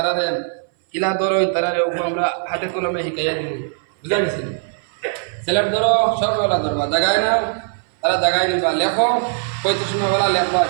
কিলা ধরো তারারে উপর আমরা হাতে কলমে শিখাইয়া দিই বুঝা গেছি সিলেক্ট ধরো সববেলা ধরবা জাগায় নাও তারা জাগায় নিবা লেখো 35 বেলা লেখবা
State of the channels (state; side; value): silent; left; 61 dB below the other